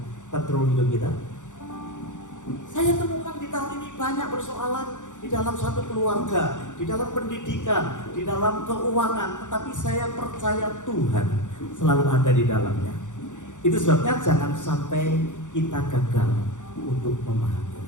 kontrol hidup kita? Saya temukan di tahun ini banyak persoalan di dalam satu keluarga, di dalam pendidikan, di dalam keuangan, tetapi saya percaya Tuhan selalu ada di dalamnya. Itu sebabnya jangan sampai kita gagal untuk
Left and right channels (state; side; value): late; right; 0.86 ms